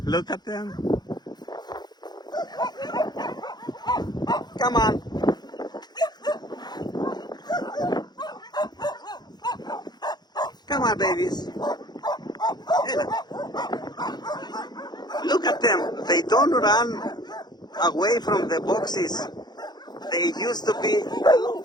Look at them. Come on. Come on, babies. Look at them. They don't run away from the boxes. They used to be.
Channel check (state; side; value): late; right; 0.20 ms